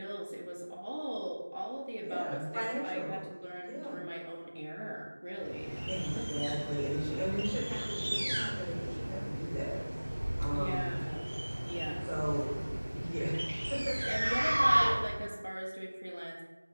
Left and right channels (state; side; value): inverted; both; correlation -1.00